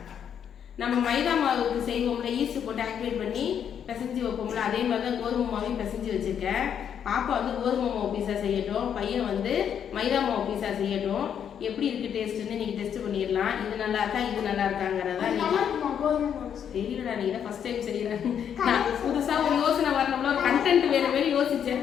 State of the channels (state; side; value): quieter; right; 8.5 dB